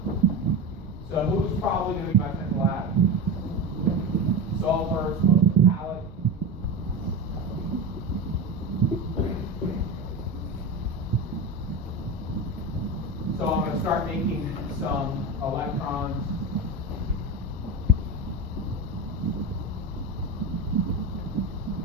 So who's probably going to be my central atom? Sulfur, it's most metallic. So I'm going to start making some electrons.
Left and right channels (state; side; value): normal; both; correlation 0.23